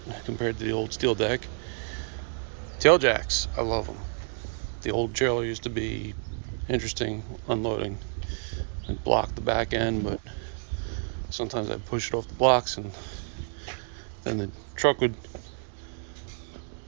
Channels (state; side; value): silent; left; 57 dB below the other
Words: compared to the old steel deck. Tail jacks, I love them. The old trailer used to be interesting unloading and block the back end, but sometimes I'd push it off the blocks and then the truck would